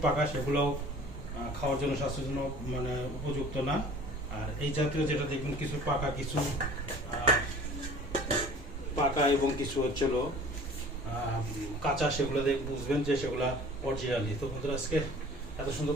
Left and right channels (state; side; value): normal; both; correlation 0.46